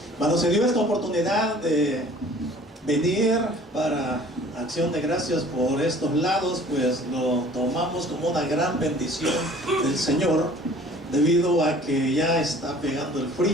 cuando se dio esta oportunidad de venir para acción de gracias por estos lados, pues lo tomamos como una gran bendición del Señor, debido a que ya está pegando el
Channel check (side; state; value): both; normal; correlation 0.50